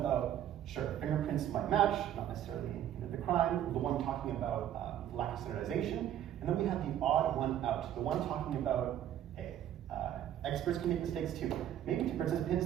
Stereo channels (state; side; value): quieter; left; 11.0 dB